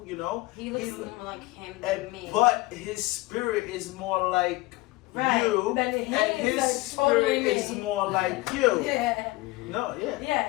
you know. He looks He- more like him than And, me. but his spirit is more like Right. you, But and his his is totally spirit is me. more like you. Yeah. No, yeah,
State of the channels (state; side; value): quieter; right; 20.8 dB